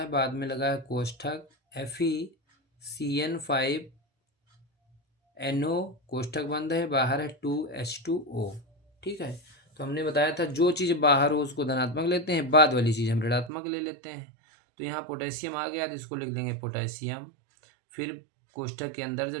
बाद में लगा है कोष्ठक, FeCN5NO कोष्ठक बंद है, बाहर है 2H2O। ठीक है। तो हमने बताया था जो चीज़ बाहर हो उसको धनात्मक लेते हैं, बाद वाली चीज़ हम ऋणात्मक ले लेते हैं। तो यहाँ पोटेशियम आ गया तो इसको लिख देंगे पोटेशियम। फिर कोष्ठक के अंदर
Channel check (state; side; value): drops out; left; at 13.5 s